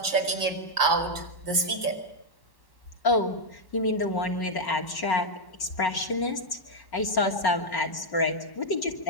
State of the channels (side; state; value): right; late; 1.1 ms